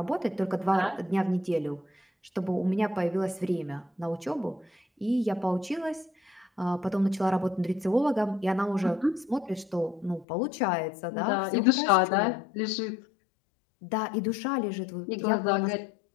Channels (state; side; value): drops out; right; at 10.2 s